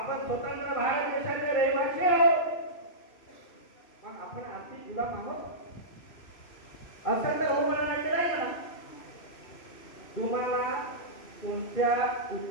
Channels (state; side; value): late; right; 2.6 ms